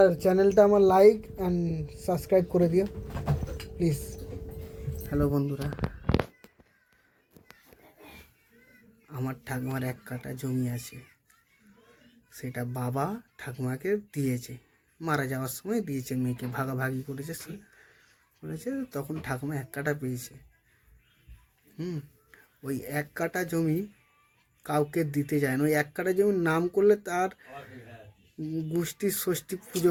চ্যানেলটা আমার লাইক অ্যান্ড সাবস্ক্রাইব করে দিও প্লিজ। হ্যালো বন্ধুরা, আমার ঠাকুমার 1 কাঠা জমি আছে, সেটা বাবা ঠাকুমাকে দিয়েছে, মারা যাওয়ার সময় দিয়েছে, মেয়েকে ভাগাভাগি করেছে, তখন ঠাকুমা 1 কাঠা পেয়েছে। ওই 1 কাঠা জমি কাউকে দিতে যায় না। ওই 1 কাঠা জমির নাম করলে তার গোষ্ঠীর ষষ্ঠী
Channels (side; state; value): both; identical; correlation 1.00